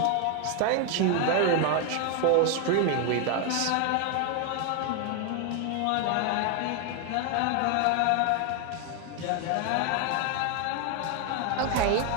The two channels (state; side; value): different; both; correlation 0.01